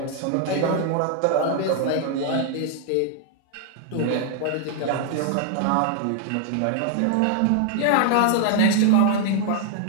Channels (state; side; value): different; both; correlation 0.00